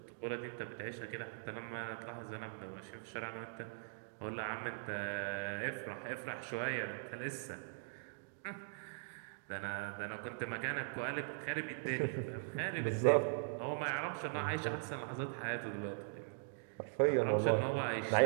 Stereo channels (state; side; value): silent; left; digital silence